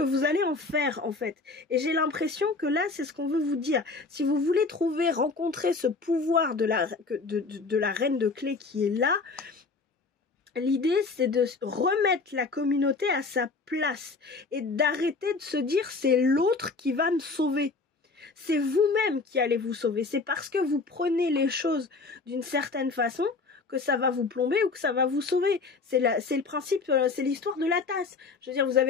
vous allez en faire en fait. Et j'ai l'impression que là, c'est ce qu'on veut vous dire. Si vous voulez rencontrer ce pouvoir de la reine de clés qui est là, l'idée c'est de remettre la communauté à sa place et d'arrêter de se dire c'est l'autre qui va me sauver. C'est vous-même qui allez vous sauver. C'est parce que vous prenez les choses d'une certaine façon que ça va vous plomber ou que ça va vous sauver. C'est le principe, c'est l'histoire de la tasse. Je veux dire, vous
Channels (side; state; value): right; quieter; 4.1 dB